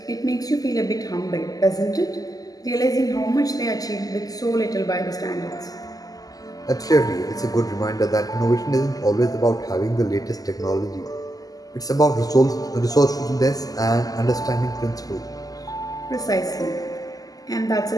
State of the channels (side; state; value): right; late; 0.17 ms